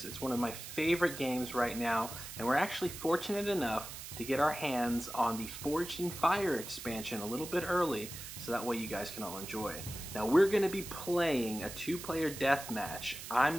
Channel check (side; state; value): right; noise; hiss, 10 dB below the sound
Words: It's one of my favorite games right now, and we're actually fortunate enough to get our hands on the Forged in Fire expansion a little bit early, so that way you guys can all enjoy. Now we're going to be playing a 2-player deathmatch. I'm